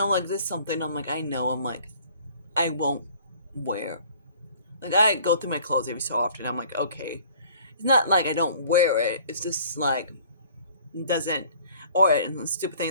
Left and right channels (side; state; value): both; inverted; correlation -0.53